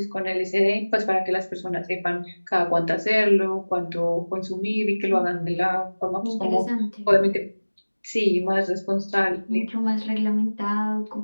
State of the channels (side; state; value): both; inverted; correlation -1.00